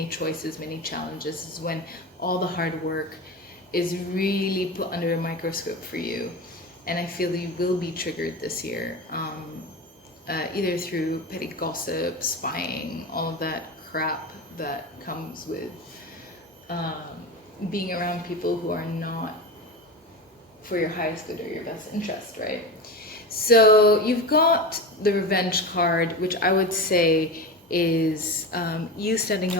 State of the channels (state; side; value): normal; both; correlation 0.25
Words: choices, many challenges. This is when all the hard work is really put under a microscope for you. And I feel you will be triggered this year, either through petty gossip, spying, all of that crap that comes with being around people who are not for your highest good or your best interest, right? So you've got the revenge card, which I would say is you standing